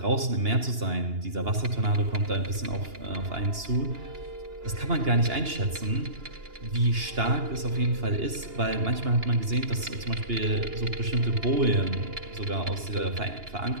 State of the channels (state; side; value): late; left; 2.8 ms